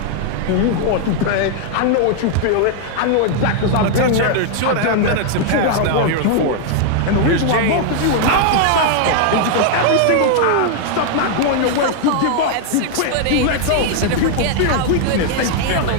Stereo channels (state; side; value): different; both; correlation 0.00